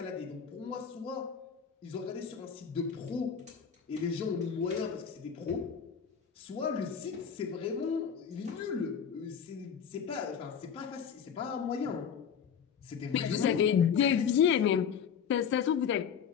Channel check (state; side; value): quieter; right; 7.3 dB